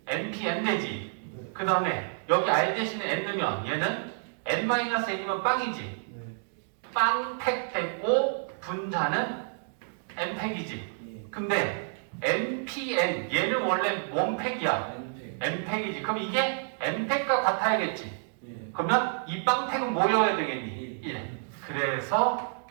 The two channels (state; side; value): silent; left; digital silence